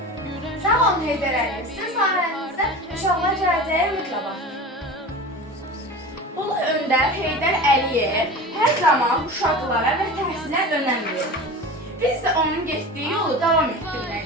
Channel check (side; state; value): both; normal; correlation 0.33